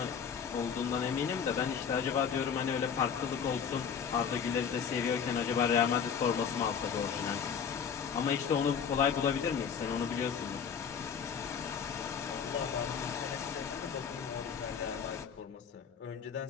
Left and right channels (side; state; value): right; quieter; 7.1 dB